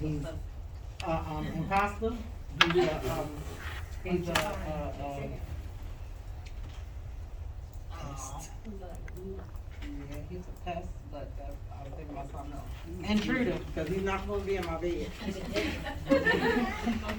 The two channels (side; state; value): both; identical; correlation 1.00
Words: imposter. He's yeah, he's a pest, but I was thinking about something else. Intruder, because he's not supposed to be in my bed.